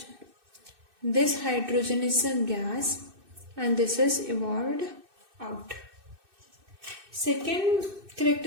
This hydrogen is a gas and this is evolved out. Second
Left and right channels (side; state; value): left; late; 2.6 ms